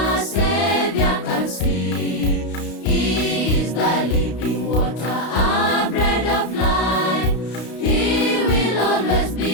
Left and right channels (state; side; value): late; right; 32 ms